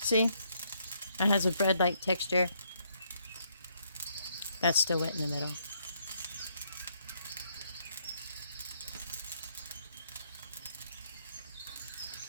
See? It has a bread-like texture. That's still wet in the middle.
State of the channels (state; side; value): inverted; both; correlation -0.72